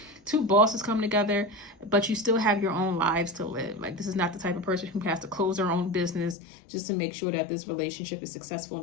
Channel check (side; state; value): right; drops out; at 6.4 s